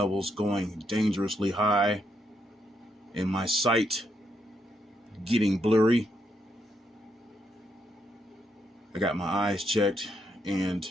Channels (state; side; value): normal; both; correlation 0.78